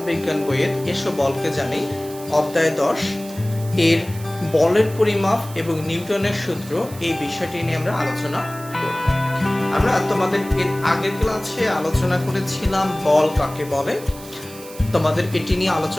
বিজ্ঞান বইয়ের এসো বলকে জানি অধ্যায় 10 এর বলের পরিমাপ এবং নিউটনের সূত্র এই বিষয়টি নিয়ে আমরা আলোচনা করব। আমরা তোমাদের এর আগের ক্লাসে আলোচনা করেছিলাম বল কাকে বলে, তোমাদের এটি নিয়ে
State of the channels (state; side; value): noise; right; hiss, 17 dB below the sound